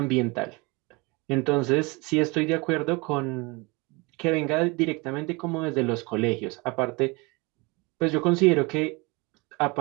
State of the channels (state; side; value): quieter; left; 26.7 dB